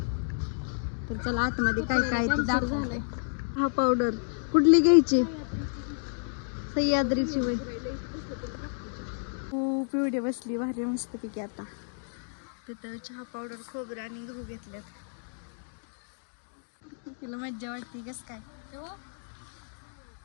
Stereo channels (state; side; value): silent; right; digital silence